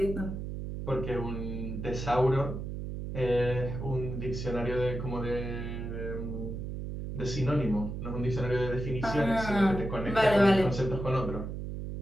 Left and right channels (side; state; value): right; noise; hum, 6 dB below the sound